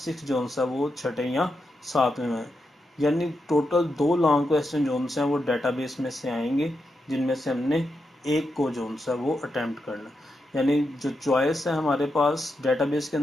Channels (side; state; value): both; normal; correlation 0.86